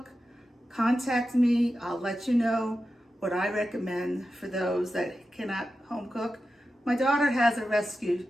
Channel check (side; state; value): both; normal; correlation 0.91